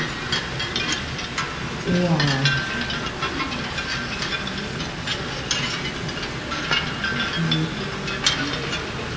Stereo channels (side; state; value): both; identical; correlation 1.00